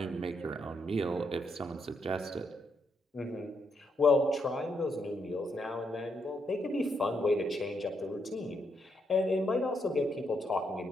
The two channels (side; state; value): both; normal; correlation 0.78